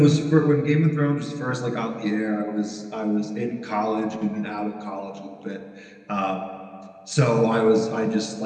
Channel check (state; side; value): identical; both; correlation 1.00